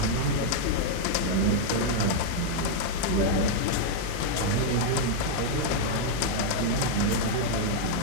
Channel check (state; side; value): different; both; correlation 0.00